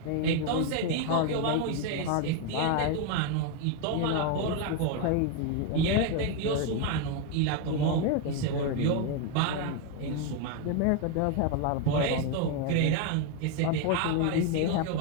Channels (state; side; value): different; both; correlation 0.01